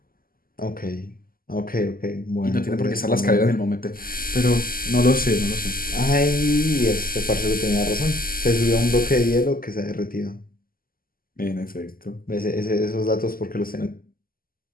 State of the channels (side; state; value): right; late; 0.42 ms